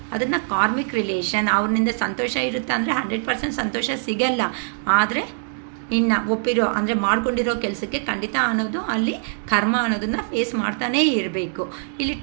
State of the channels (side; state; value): left; silent; digital silence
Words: ಅದನ್ನು ಕಾರ್ಮಿಕ್ ರಿಲೇಷನ್. ಅವ್ರನಿಂದ ಸಂತೋಷ ಇರುತ್ತೆ ಅಂದರೆ 100% ಸಂತೋಷ ಸಿಗಲ್ಲ. ಆದರೆ ಇನ್ನು ಒಪ್ಪಿರೋ ಅಂದರೆ ಮಾಡ್ಕೊಂಡಿರೋ ಕೆಲಸಕ್ಕೆ ಖಂಡಿತ ಅನ್ನೋದು ಅಲ್ಲಿ ಕರ್ಮ ಅನ್ನೋದನ್ನು ಫೇಸ್ ಮಾಡ್ತಾನೇ ಇರಬೇಕು. ಇಲ್ಲಿ